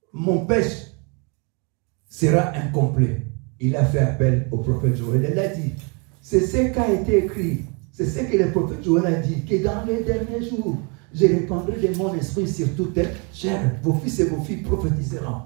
mon péché sera incomplet. Il a fait appel au prophète Joël. Il a dit, c'est ce qui a été écrit, c'est ce que le prophète Joël a dit, que dans les derniers jours, je répandrai de mon esprit sur toute chair. Vos fils et vos filles prophétiseront.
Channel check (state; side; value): quieter; left; 33.6 dB